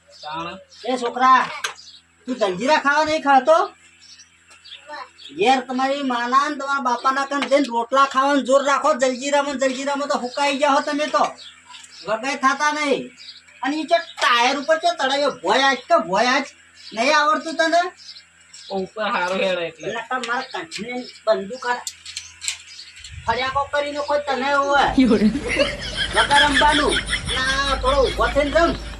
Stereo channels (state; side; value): identical; both; correlation 1.00